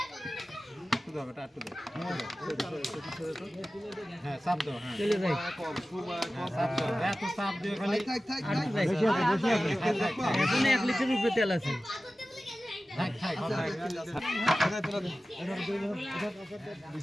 হ্যাঁ চাপ দাও হ্যাঁ চলে যাই চাপ দাও এত চাপ দিও খালি এখন 1 লিটার উপরে তেল আছে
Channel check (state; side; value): normal; both; correlation 0.95